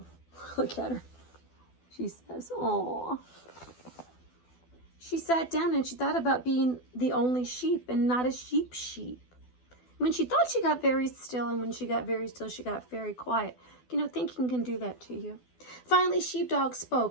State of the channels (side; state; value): right; late; 12 ms